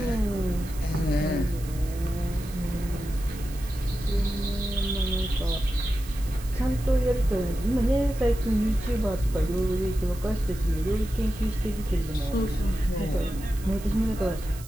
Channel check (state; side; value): noise; right; hiss, 18 dB below the sound